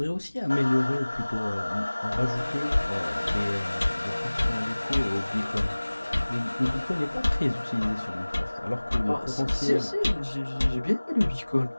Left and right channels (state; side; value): inverted; both; correlation -1.00